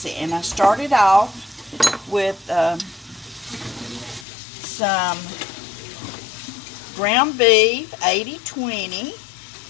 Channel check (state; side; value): drops out; right; at 4.2 s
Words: it. And I started off with some ground beef, 80/20,